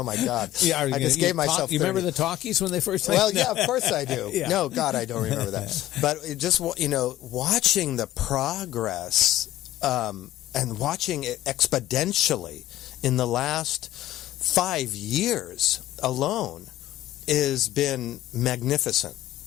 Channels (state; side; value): quieter; right; 14.3 dB